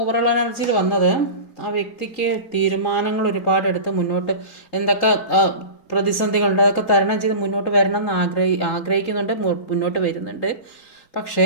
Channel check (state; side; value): late; right; 3.8 ms